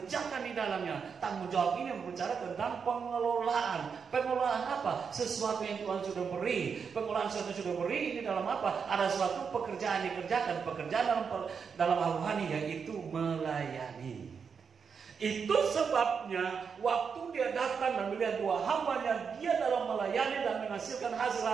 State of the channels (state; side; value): quieter; left; 6.2 dB